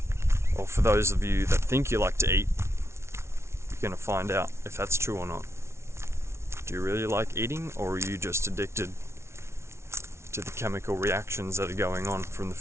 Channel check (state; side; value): late; left; 0.13 ms